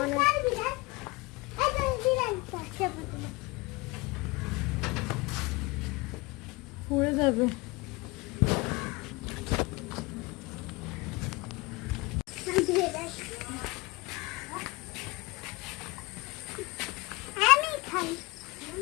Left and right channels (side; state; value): right; quieter; 24.5 dB